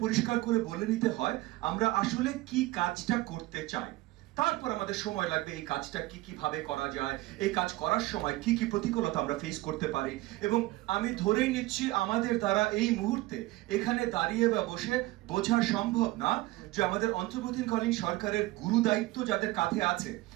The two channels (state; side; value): quieter; left; 18.6 dB